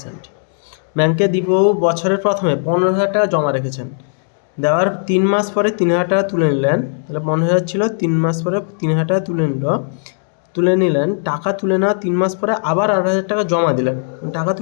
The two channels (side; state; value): right; silent; digital silence